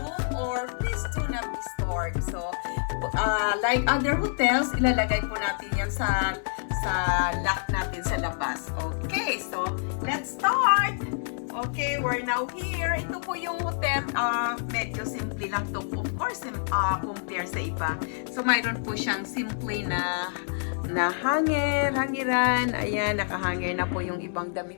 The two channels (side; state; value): right; silent; 60 dB below the other